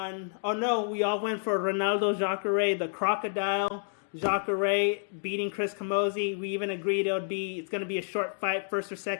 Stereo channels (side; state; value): right; silent; digital silence